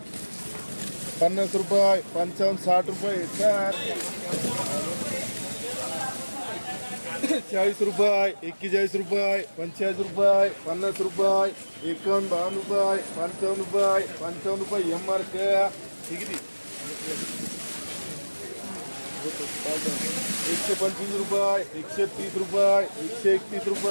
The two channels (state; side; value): inverted; both; correlation -1.00